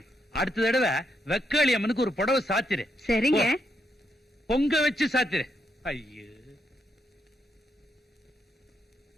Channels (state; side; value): normal; both; correlation 0.79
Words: அடுத்த தடவை வெக்காளி அம்மனுக்கு ஒரு புடவை சாத்திரு. சரிங்க. பொங்க வச்சு சாத்திரு. ஐயோ,